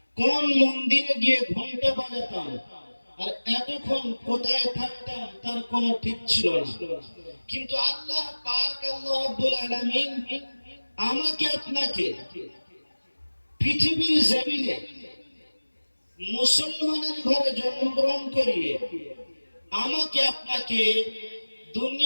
কোন মন্দিরে গিয়ে ঘন্টা বাজাতাম আর এতক্ষণ কোথায় থাকতাম তার কোনো ঠিক ছিল না। কিন্তু আল্লাহ পাক আল্লাহ রাব্বুল আলামিন আমাকে আপনাকে পৃথিবীর জমিনে মুসলমানের ঘরে জন্মগ্রহণ করিয়ে আমাকে আপনাকে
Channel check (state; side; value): inverted; both; correlation -1.00